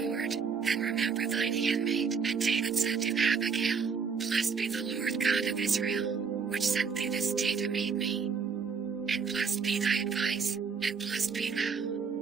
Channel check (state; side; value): quieter; left; 5.8 dB